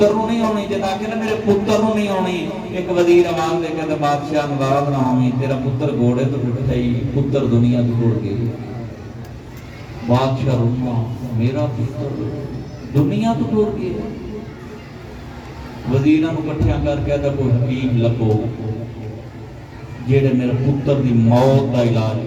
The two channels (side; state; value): both; identical; correlation 1.00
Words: نو نہیں ہونی، جتا کہ میرے پتر نو نہیں ہونی۔ ایک وزیر آواز دے کے بادشاہ ناراض نہ ہوئی، تیرا پتر گھوڑے تو ٹوٹ گئی، پتر دنیا تو ٹوٹ گئی۔ بادشاہ روما، میرا پتر دنیا تو ٹوٹ گیا۔ وزیراں نو کٹھیاں کر کے ادھا کوئی حکیم لبو جیڑے میرے پتر دی موت دا علاج